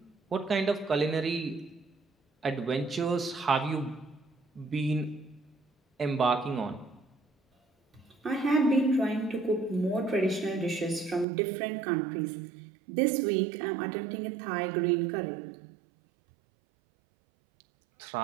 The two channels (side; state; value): left; drops out; at 11.2 s